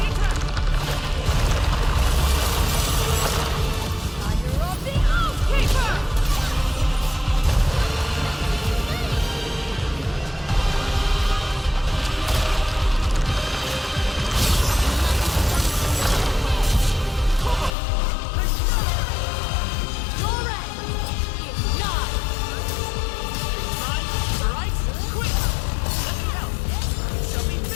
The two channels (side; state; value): right; drops out; at 17.7 s